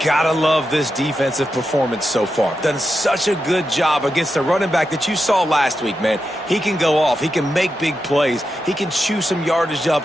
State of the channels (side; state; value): both; normal; correlation 0.88